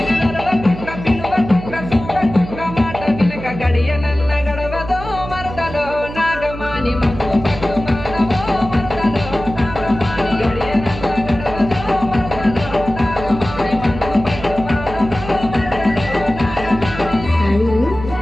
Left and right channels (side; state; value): right; noise; hum, 11 dB below the sound